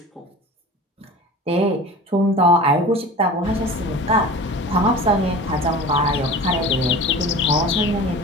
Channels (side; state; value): both; normal; correlation 0.37